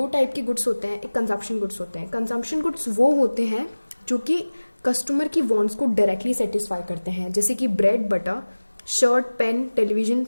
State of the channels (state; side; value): inverted; both; correlation -1.00